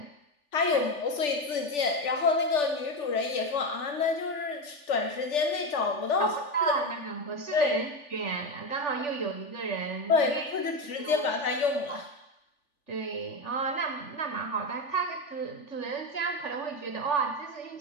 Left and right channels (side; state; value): right; late; 3.4 ms